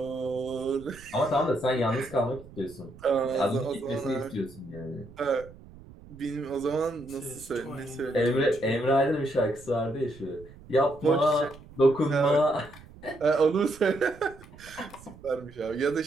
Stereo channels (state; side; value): noise; right; rumble, 20 dB below the sound